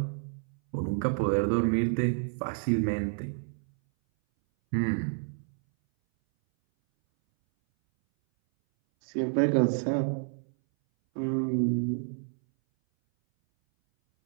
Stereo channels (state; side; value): silent; left; 58 dB below the other